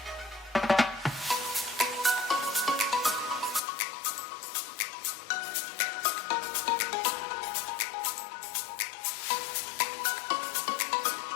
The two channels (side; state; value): right; drops out; at 3.6 s